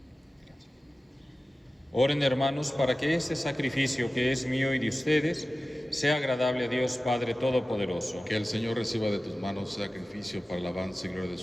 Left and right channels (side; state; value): both; normal; correlation 0.96